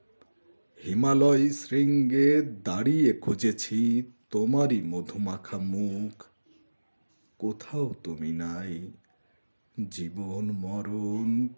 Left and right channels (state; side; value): inverted; both; correlation -1.00